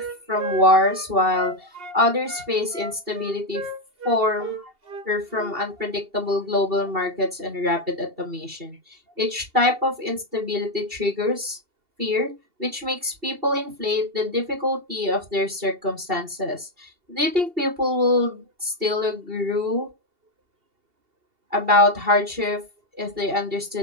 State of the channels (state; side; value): late; left; 2.7 ms